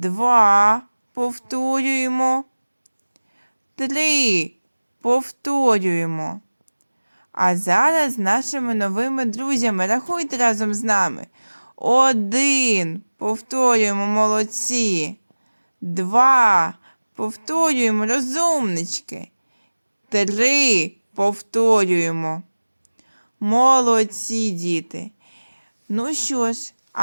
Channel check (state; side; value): inverted; both; correlation -1.00